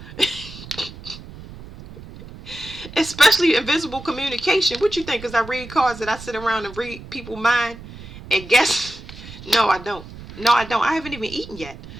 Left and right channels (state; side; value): noise; right; rumble, 15 dB below the sound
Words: Especially invisible communication. What you think? Because I read cards that I sit around and read people's mind and guess? No, I don't. No, I don't. I haven't even eaten yet.